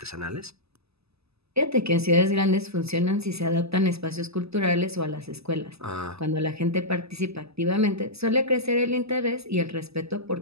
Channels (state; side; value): late; left; 0.79 ms